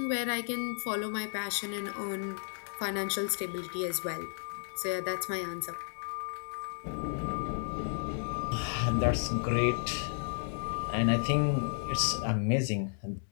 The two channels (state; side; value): silent; right; digital silence